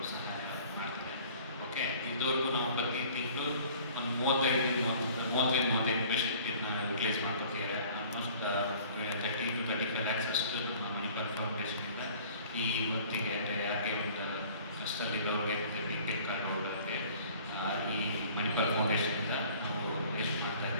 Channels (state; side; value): inverted; both; correlation -0.50